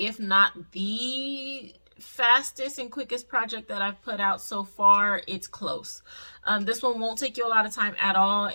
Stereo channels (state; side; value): inverted; both; correlation -1.00